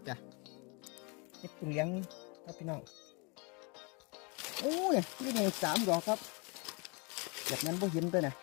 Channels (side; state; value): right; quieter; 31.1 dB